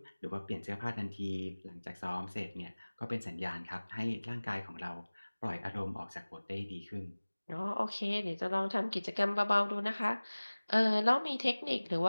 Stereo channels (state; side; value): inverted; both; correlation -1.00